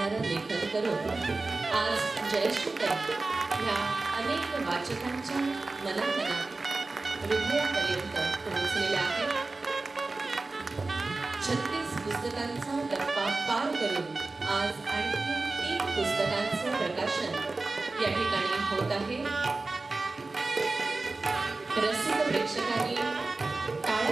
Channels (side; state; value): left; quieter; 3.5 dB